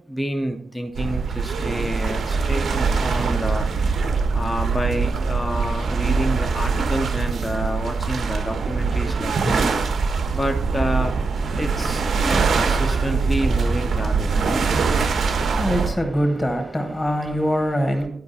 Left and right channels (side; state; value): left; quieter; 3.1 dB